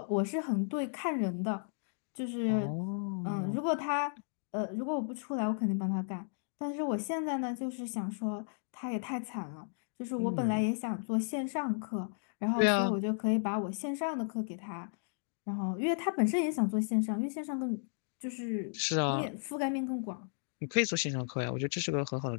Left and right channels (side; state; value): right; silent; digital silence